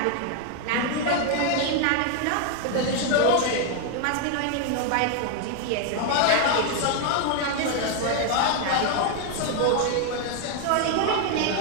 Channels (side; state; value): both; different; correlation 0.00